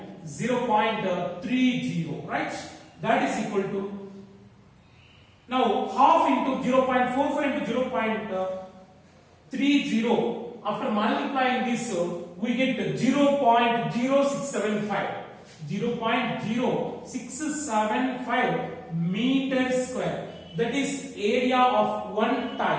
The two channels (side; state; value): both; identical; correlation 1.00